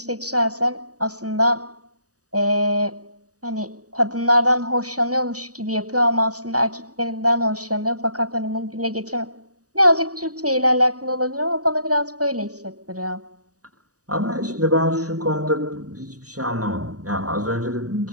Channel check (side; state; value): left; late; 0.66 ms